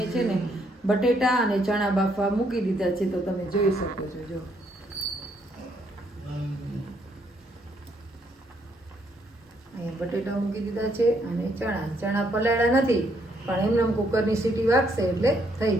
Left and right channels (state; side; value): normal; both; correlation 0.72